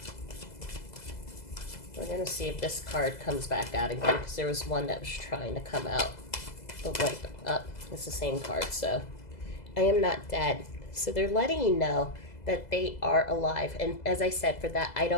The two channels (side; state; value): right; late; 2.0 ms